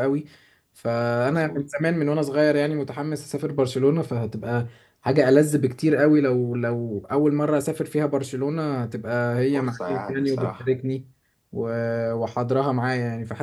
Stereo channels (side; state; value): both; identical; correlation 1.00